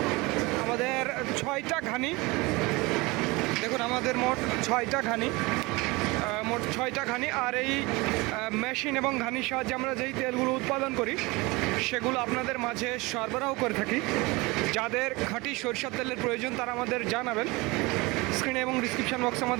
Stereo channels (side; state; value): left; quieter; 23.9 dB